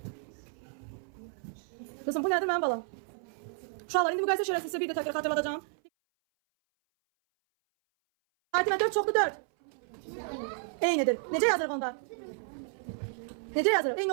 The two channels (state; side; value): silent; left; 57 dB below the other